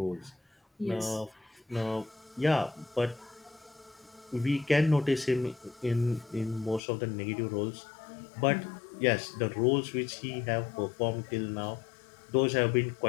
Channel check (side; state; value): right; drops out; at 6.8 s